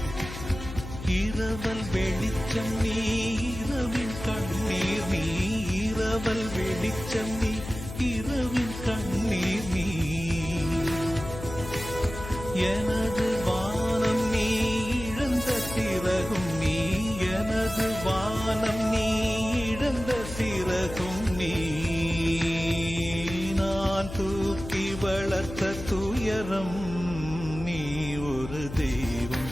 இரவல் வெளிச்சம் நீ, இரவின் கண்ணீர் நீ, இரவல் வெளிச்சம் நீ, இரவின் கண்ணீர் நீ, எனது வானம் நீ, இழந்த சிறகும் நீ, எனது வானம் நீ, இழந்த சிறகும் நீ, நான் தூக்கி வளர்த்த துயரம் நீ, ஒரு தெய்வம்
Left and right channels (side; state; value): left; noise; hum, 10 dB below the sound